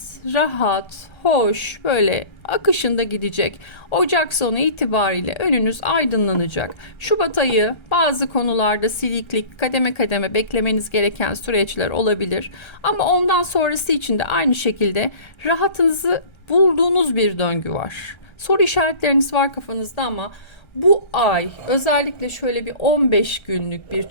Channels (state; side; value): late; right; 1.3 ms